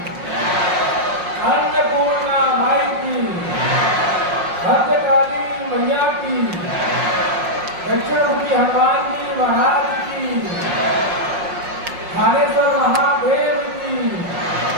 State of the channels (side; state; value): left; late; 5.6 ms